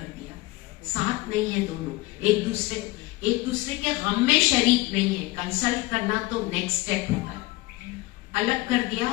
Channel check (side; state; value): right; quieter; 20.3 dB